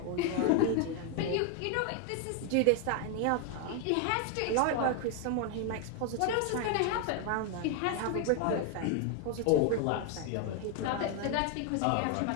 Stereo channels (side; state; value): both; different; correlation 0.01